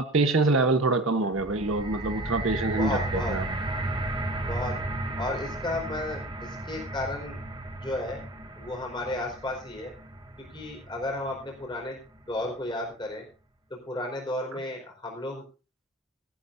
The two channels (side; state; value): both; normal; correlation 0.38